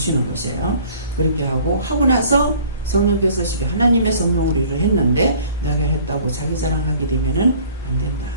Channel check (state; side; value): inverted; both; correlation -0.52